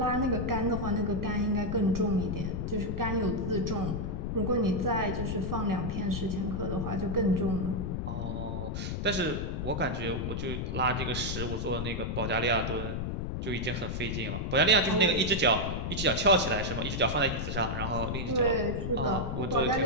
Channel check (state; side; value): noise; left; rumble, 2 dB below the sound